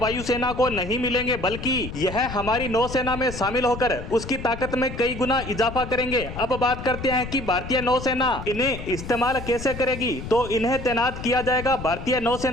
को नहीं मिलेंगे, बल्कि यह हमारी नौसेना में शामिल होकर उसकी ताकत में कई गुना इजाफा करेंगे। अब बात करते हैं कि भारतीय नौसेना इन्हें इस्तेमाल कैसे करेगी। तो इन्हें तैनात किया जाएगा भारतीय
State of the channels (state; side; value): noise; left; rumble, 10 dB below the sound